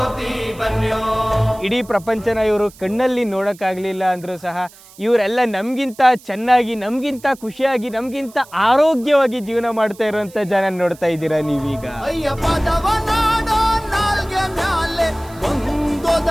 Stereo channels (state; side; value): noise; right; hiss, 23 dB below the sound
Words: ಬನ್ಯೋ. ಇಡೀ ಪ್ರಪಂಚನ ಇವರು ಕಣ್ಣಲ್ಲಿ ನೋಡೋಕ್ಕಾಗಲಿಲ್ಲ ಅಂದರೂ ಸಹ ಇವರೆಲ್ಲ ನಮಗಿಂತ ಚೆನ್ನಾಗಿ, ನಮಗಿಂತ ಖುಷಿಯಾಗಿ, ನಮಗಿಂತ ಆರೋಗ್ಯವಾಗಿ ಜೀವನ ಮಾಡ್ತಾ ಇರುವಂಥ ಜನ ನೋಡ್ತಾ ಇದ್ದೀರಾ ನೀವೀಗ. ಅಯ್ಯ ಪದವ ನಾಡೋ ನಾಲ್ಗೆ ಮ್ಯಾಲೆ